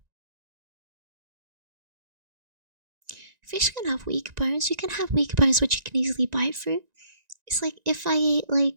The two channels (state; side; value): late; left; 1.9 ms